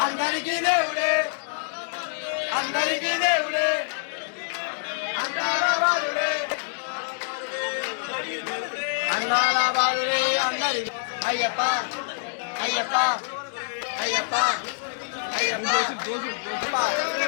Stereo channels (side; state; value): right; silent; digital silence